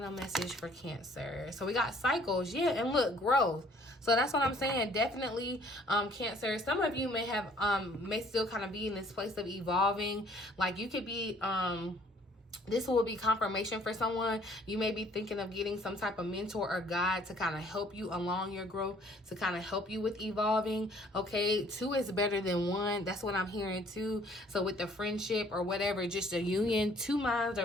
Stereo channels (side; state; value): both; normal; correlation 0.58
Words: message for Cancer. So we got cycles. Yeah, and look, growth. So that's what I'm saying. Definitely, Cancer. Some of you may have, may still kind of be in this place of evolving. Like you could be, This will be confirmation for someone. You may be thinking of getting some type of mentor or guide to kind of help you along your growth, to kind of help you with evolving. Okay, 2 is better than 1. That's what I'm hearing too. So with the friendship or whatever, just a union, 2 minds